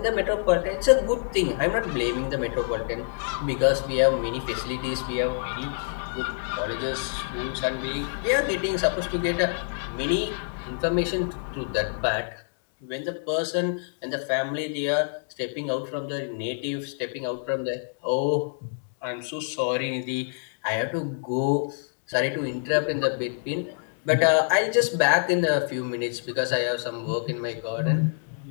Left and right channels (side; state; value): right; silent; digital silence